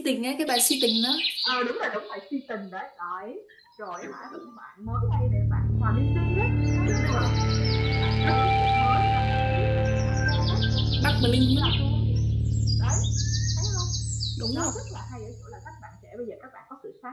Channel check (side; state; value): both; identical; correlation 1.00